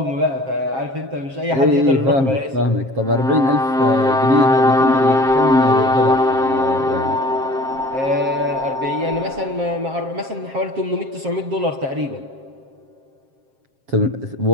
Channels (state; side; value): late; left; 7.5 ms